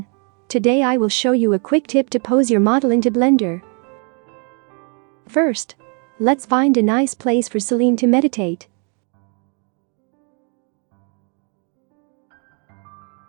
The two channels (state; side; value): quieter; left; 38.9 dB